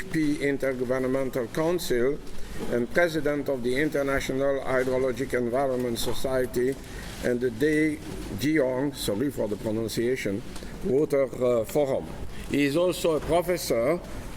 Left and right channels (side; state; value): both; identical; correlation 1.00